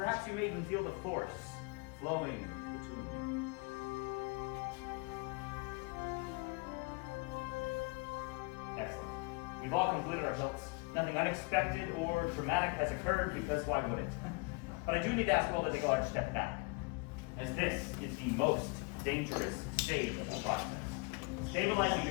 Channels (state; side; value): quieter; right; 29.4 dB